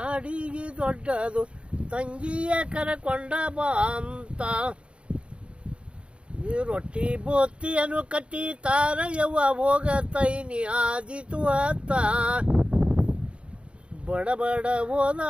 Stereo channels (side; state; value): left; late; 0.058 ms